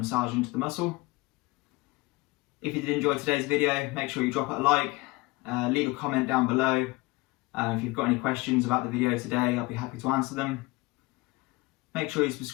into the muscle. If you did enjoy today's video, make sure you drop it a like, leave a comment down below. If you've got any questions about the video today, I'll be happy to answer them. Make sure you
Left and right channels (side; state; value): right; quieter; 22.8 dB